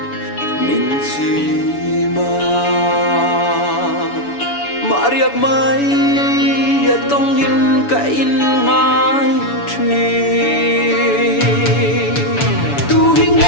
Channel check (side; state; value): right; late; 7.0 ms